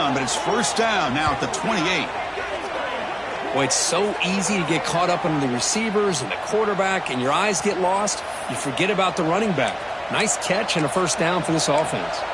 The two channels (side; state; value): both; identical; correlation 1.00